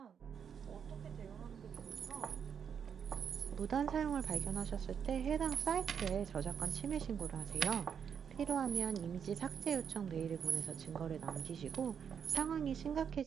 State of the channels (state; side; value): quieter; left; 7.5 dB